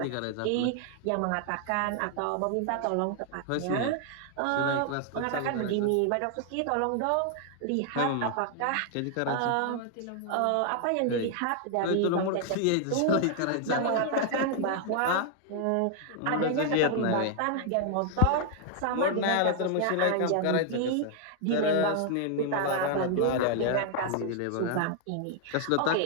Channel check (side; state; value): both; different; correlation 0.00